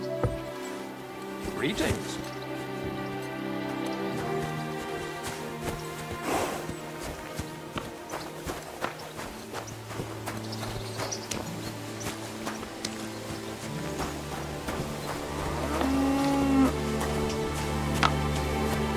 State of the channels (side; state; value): both; identical; correlation 1.00